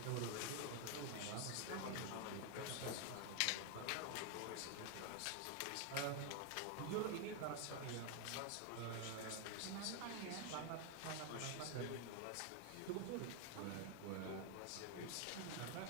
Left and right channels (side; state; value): both; different; correlation 0.01